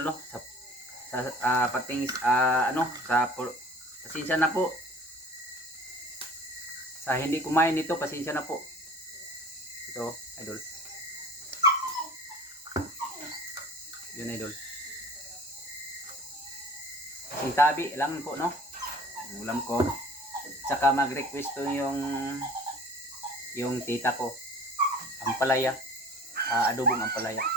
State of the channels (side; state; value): both; normal; correlation 0.46